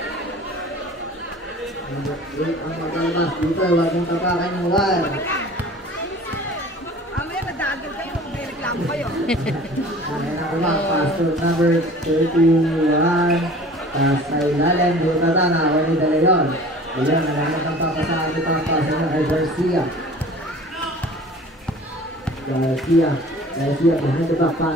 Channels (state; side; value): normal; both; correlation 0.44